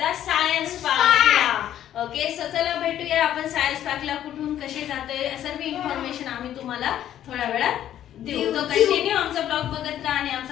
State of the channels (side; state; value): right; quieter; 11.4 dB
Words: सायन्स पार्कला. ओके, सो चला भेटूया आपण सायन्स पार्कला. कुठून कसे जातोय सर्व इन्फॉर्मेशन आम्ही तुम्हाला थोड्या वेळात देऊ. तो कंटिन्यू आमचा ब्लॉग बघत राहा. आणि